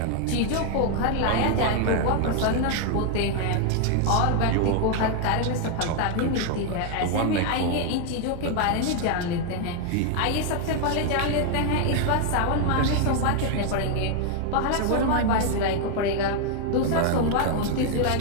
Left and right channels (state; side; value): different; both; correlation 0.00